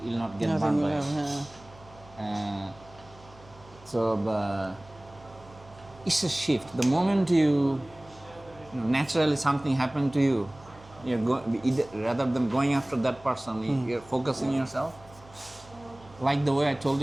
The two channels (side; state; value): right; noise; hum, 23 dB below the sound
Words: you'll not get burned by it. So it's a shift. The moment you naturally something happened to you, rather than going after that person, you're focusing yourself. Like the way I told